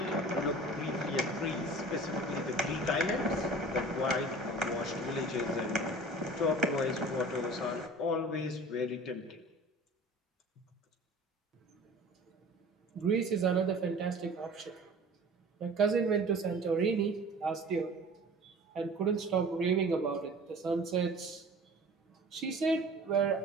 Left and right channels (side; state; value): both; normal; correlation 0.43